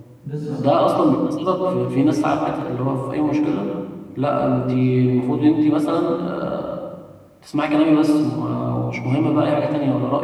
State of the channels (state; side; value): identical; both; correlation 1.00